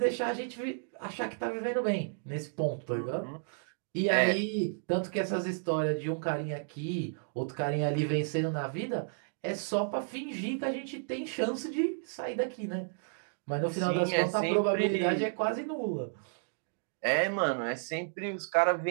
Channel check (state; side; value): silent; left; digital silence